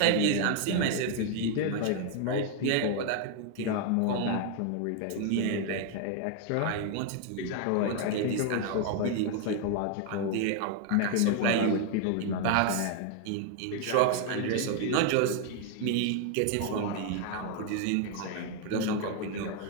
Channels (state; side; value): different; both; correlation 0.00